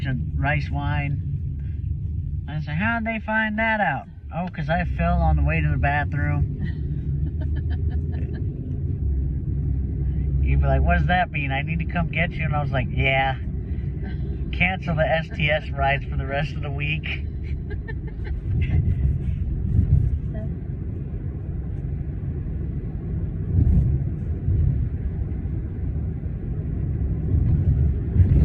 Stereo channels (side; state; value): both; identical; correlation 1.00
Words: of rice wine. I said, how'd they find that out? Oh, because I fell on the way to the bathroom. You'd be like, what does that mean? I need to come get you? And I was like, yeah. Cancel the STS rides for the rest of the week.